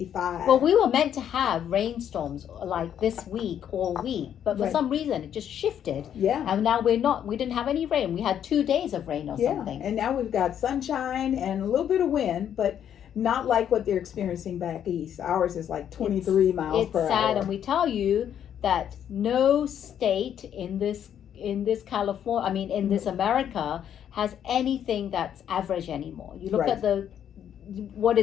Well, we were meant to have rainstorms like this week all week, but for Right. some reason it just shifted. Yeah. And now we didn't have any rain. We had 2 days of rain or Yeah. something. And now we've got sunshine and a little bit of wind, but not like what they're experiencing back east. Ours is like 23 miles It's per sad, hour. and we tell you that no state in this California, in this America, has anything that's average anymore. You look Right. at what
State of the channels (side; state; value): right; quieter; 9.5 dB